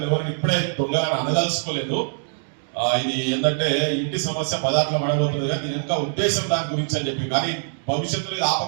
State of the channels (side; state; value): left; silent; digital silence